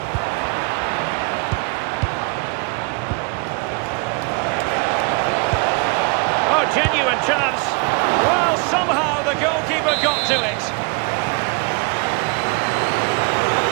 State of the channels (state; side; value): quieter; left; 31.8 dB